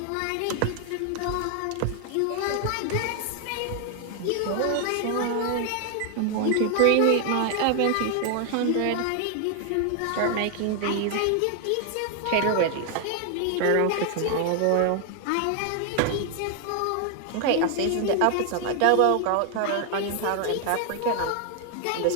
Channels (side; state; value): both; different; correlation 0.00